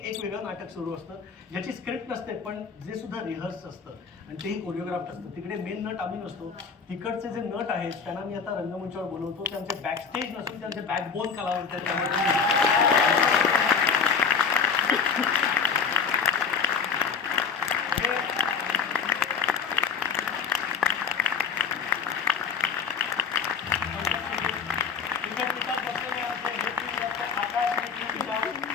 वेगळं नाटक सुरू असतं ज्याची स्क्रिप्ट नसते, पण जे सुद्धा रिहर्स असतं आणि तेही कोरिओग्राफ्ट असतं. तिकडे मेन नट आम्ही नसतो, तिकडचे जे नट आहेत त्यांना मी आता रंगमंचावर बोलवतो. त्यांचे बॅकस्टेज नसून त्यांचे बॅकबोन कलावंत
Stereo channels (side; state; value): right; quieter; 5.9 dB